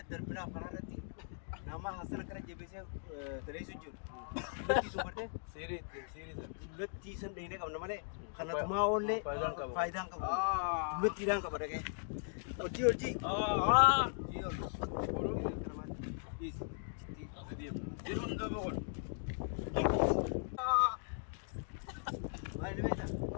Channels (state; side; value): silent; right; digital silence